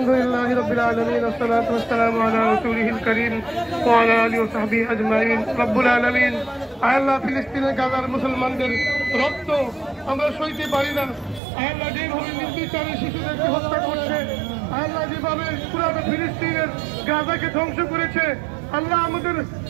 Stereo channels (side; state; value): left; drops out; at 11.4 s